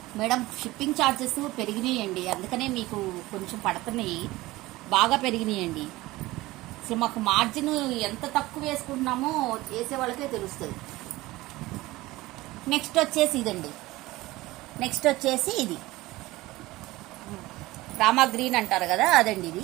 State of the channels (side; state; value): left; quieter; 18.9 dB